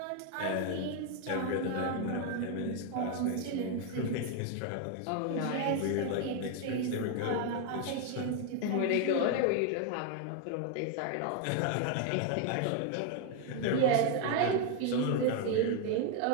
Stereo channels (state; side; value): different; both; correlation 0.01